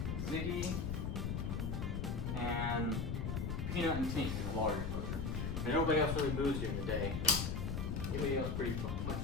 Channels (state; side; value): noise; left; rumble, 1 dB below the sound